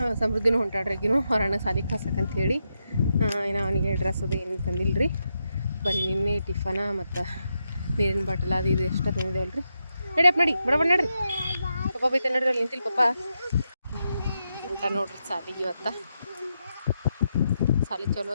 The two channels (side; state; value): both; inverted; correlation -0.85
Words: ಸಮೃದ್ಧಿನೂ ಹೊಂಟಾಡ್ರಿಗಿನೂ ಹೊರಣ್ಣ ಸಾಲಿಗೆ ಕಳ್ಸಕ್ಕಂತ ಹೇಳಿ. ಏನೋ ಅವನಿಗೆ ಡ್ರೆಸ್ ಅದು ಏನು ತಂದಿಲ್ಲ ರೀ. ಬರೀ ನಿನ್ನೆ ಟಿಫನ ಮತ್ತು ನೀರಿನ ಬಾಟಲ್ ಅದು ಇದು ಎಷ್ಟ ತಂದಿದ್ದೇವಲ್ಲ ರೀ. ನಡಿಯಪ್ಪ ನಡಿ, ಬಡ ನಡ್ರಿ. ಪಪ್ಪ ಬೈತ ನಡ್ರಿ, ಅಲ್ಲಿ ನಿಂತಿಲ್ಲ ಪಪ್ಪ ಅಂತ ನೋಡ್ರಿ ಸಾಲಿಗೆ. ಇವತ್ತು ಸಾಲಿ ಚಲೋ